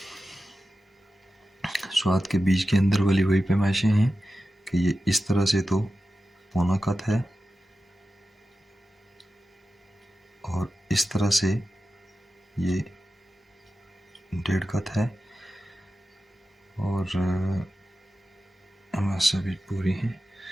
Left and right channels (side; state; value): both; normal; correlation 0.93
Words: स्वाद के बीज के अंदर वाली वही पैमाइशें हैं कि ये इस तरह से तो पौना कत है और इस तरह से ये 1.5 कत है और हमारे सभी पूरी हैं।